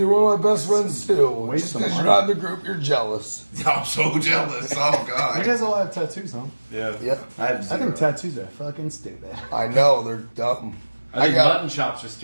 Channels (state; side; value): inverted; both; correlation -1.00